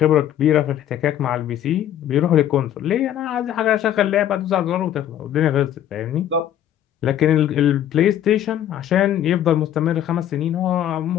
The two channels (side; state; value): right; quieter; 11.1 dB